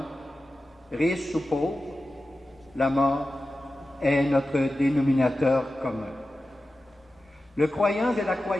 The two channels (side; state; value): both; normal; correlation 0.93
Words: riche ou pauvre, la mort est notre dénominateur commun. Le croyant et la